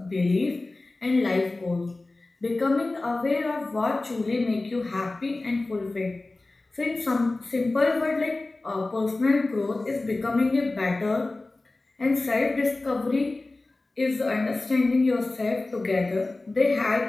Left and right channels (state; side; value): quieter; right; 3.1 dB